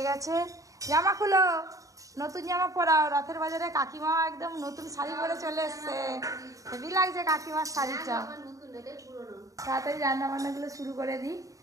গেছে। জামা খুলো, নতুন জামা পরাও। রথের বাজারে কাকিমা একদম নতুন শাড়ি পরে চলে এসছে, হেভি লাগছে কাকিমার শাড়িটা। তাড়াতাড়ি রান্না বান্নাগুলো শুরু করে দিই,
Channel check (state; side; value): late; left; 0.16 ms